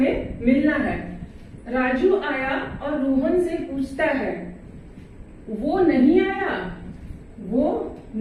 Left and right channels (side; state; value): both; identical; correlation 1.00